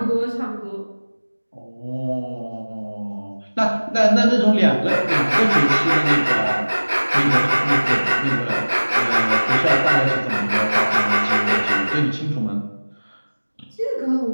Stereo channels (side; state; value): both; inverted; correlation -1.00